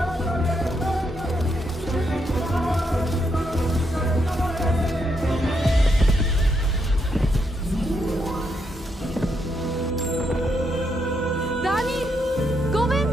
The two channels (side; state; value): both; normal; correlation 0.79